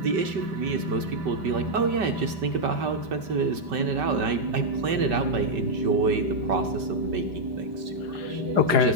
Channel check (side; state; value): left; late; 5.2 ms